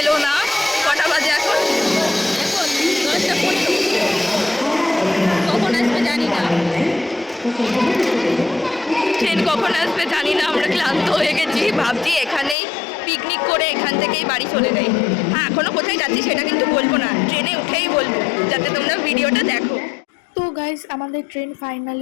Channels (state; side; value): drops out; right; at 12.6 s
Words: এলো না। কটা বাজে এখন? কখন আসবে জানি না, ট্রেন কখন আসবে জানি না। আমরা ক্লান্ত হয়ে গেছি, ভাবছি এখানেই পিকনিক করে এখান থেকেই বাড়ি চলে যাই। হ্যাঁ, এখনো কোথায় যাচ্ছি সেটা কিন্তু বলবো না, ট্রেনে উঠেই বলবো, যাতে তোমরা ভিডিওটা দেখো। তো গাইস, আমাদের ট্রেন